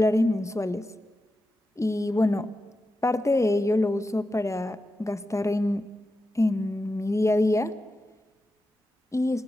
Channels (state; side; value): normal; both; correlation 0.91